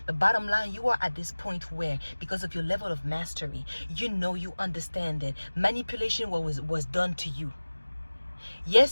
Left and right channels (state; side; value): inverted; both; correlation -1.00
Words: But bottom line, you are at this point where, because of your level of mastery, you understand that manipulation was done to you.